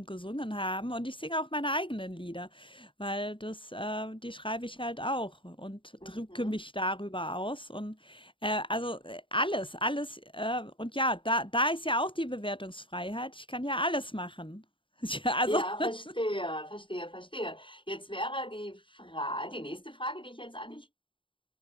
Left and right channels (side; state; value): right; late; 0.25 ms